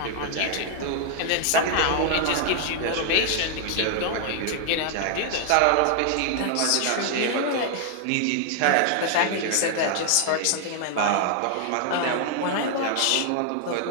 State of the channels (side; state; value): both; different; correlation 0.00